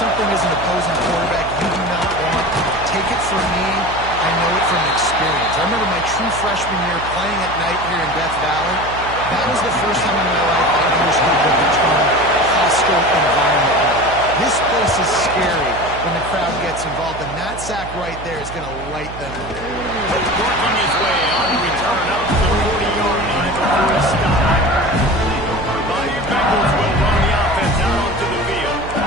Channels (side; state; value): right; noise; hum, 12 dB below the sound